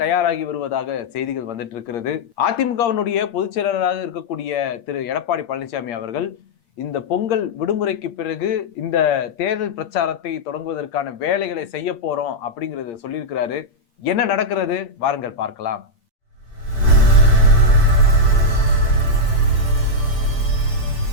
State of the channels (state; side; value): late; right; 8.6 ms